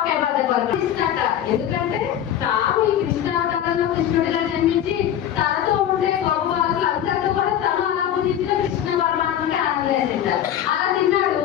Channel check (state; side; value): quieter; right; 10.5 dB